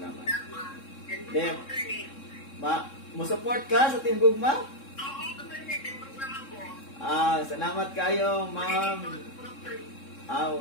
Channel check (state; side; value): late; right; 3.7 ms